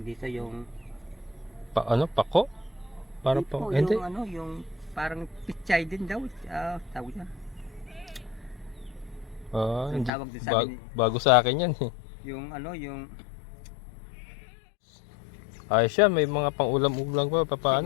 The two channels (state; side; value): drops out; right; at 10.1 s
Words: dito yung Pako? Para po, pa, hindi. yung yung parang pechay din daw. Tawag yan. Yung Hindi. tawag din sa akin, Bago sa akin yan eh. yung yung Ayos siya, may mga pang-ulam-ulam pa,